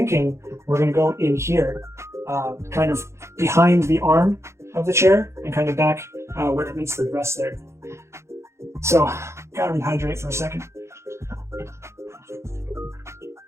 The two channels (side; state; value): left; late; 0.13 ms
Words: we're going to go in here, kind of behind the arm of the chair and kind of back where it meets the breast there. So, gotta rehydrate for a second.